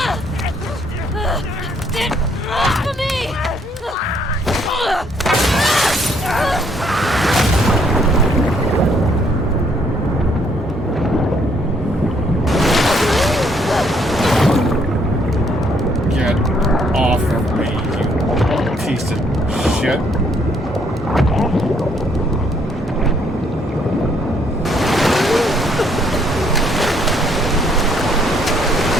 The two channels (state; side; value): normal; both; correlation 0.68